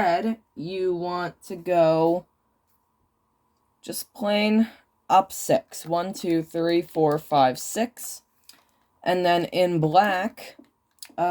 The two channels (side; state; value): both; identical; correlation 1.00